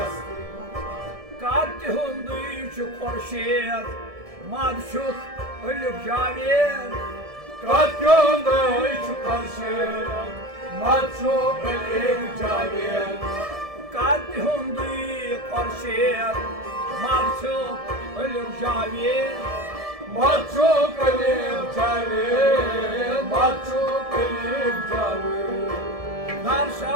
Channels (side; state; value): left; late; 1.7 ms